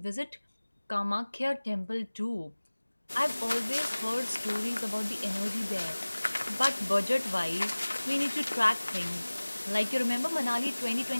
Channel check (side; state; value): both; inverted; correlation -1.00